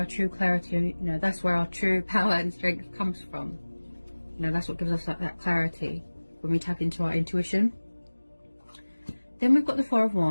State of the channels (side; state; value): both; inverted; correlation -1.00